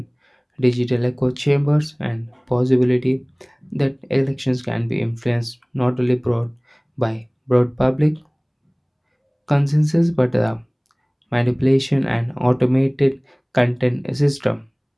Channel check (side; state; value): both; identical; correlation 1.00